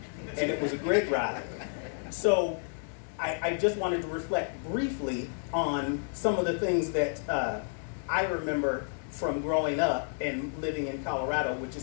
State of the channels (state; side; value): silent; right; digital silence